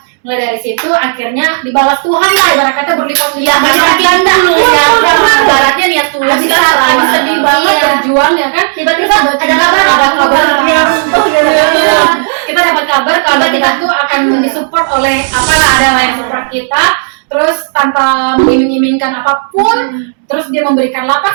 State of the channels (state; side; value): silent; left; digital silence